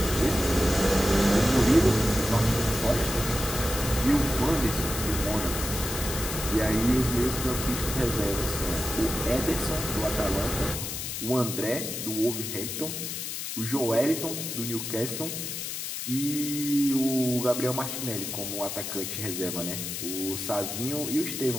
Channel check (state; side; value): noise; left; hiss, 5 dB below the sound